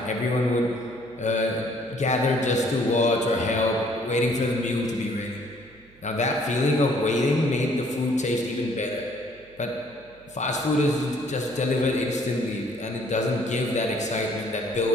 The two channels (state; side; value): noise; right; hum, 28 dB below the sound